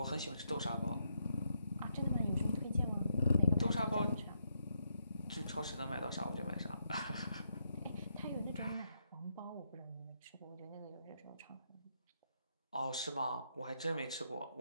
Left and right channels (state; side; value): inverted; both; correlation -0.78